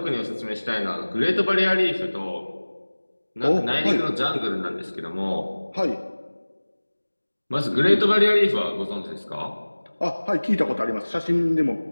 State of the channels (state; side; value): inverted; both; correlation -1.00